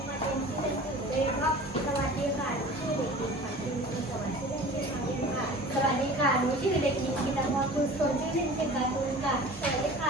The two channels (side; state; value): both; normal; correlation 0.41